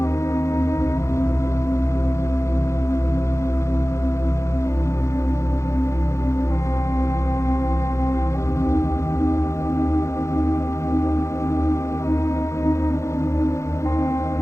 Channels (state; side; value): late; right; 0.14 ms